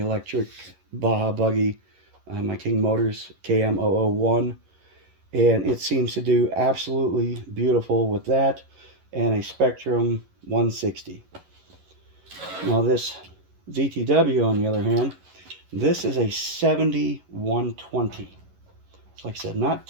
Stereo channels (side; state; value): left; late; 11 ms